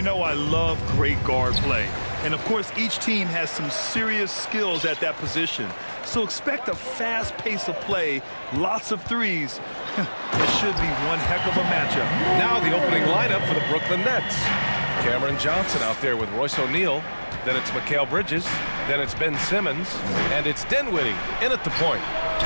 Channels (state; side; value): inverted; both; correlation -1.00